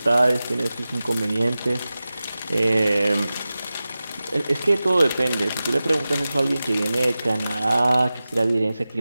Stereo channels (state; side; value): inverted; both; correlation -0.95